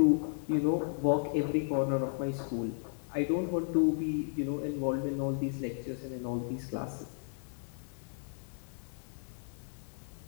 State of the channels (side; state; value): right; silent; digital silence